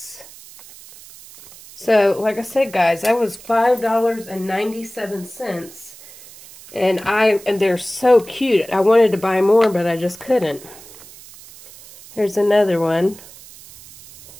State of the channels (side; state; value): right; noise; hiss, 20 dB below the sound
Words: So, like I said, guys, that was $5.97. And they're so cute. I wanted to buy more, but I just couldn't. Here's another one.